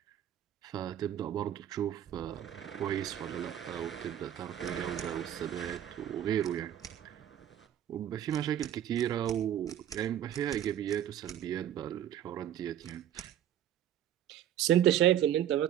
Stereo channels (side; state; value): left; quieter; 10.9 dB